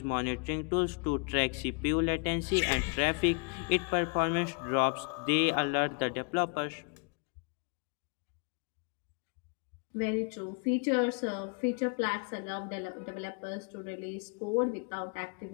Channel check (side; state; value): right; quieter; 37.2 dB